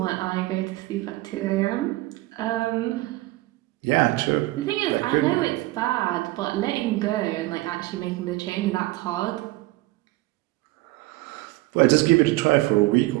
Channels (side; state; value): left; quieter; 19.2 dB